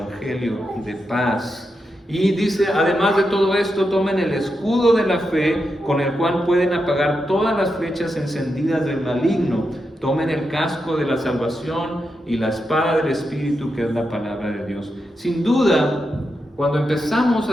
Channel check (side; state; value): both; normal; correlation 0.86